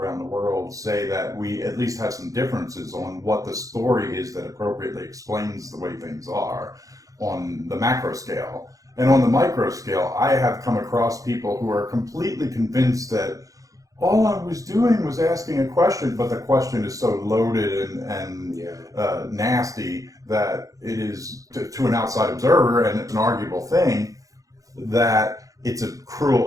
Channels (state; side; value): late; left; 0.17 ms